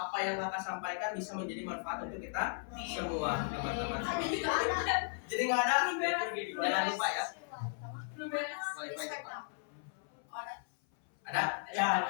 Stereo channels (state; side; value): silent; right; 54 dB below the other